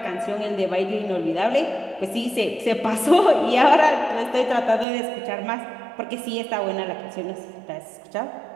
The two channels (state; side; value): drops out; left; at 4.9 s